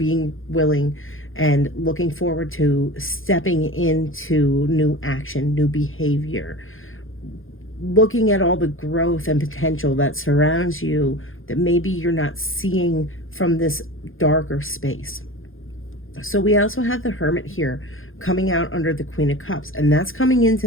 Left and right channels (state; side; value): late; right; 0.59 ms